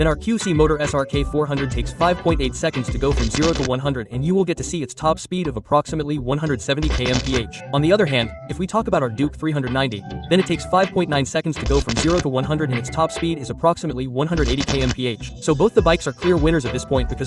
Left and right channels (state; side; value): identical; both; correlation 1.00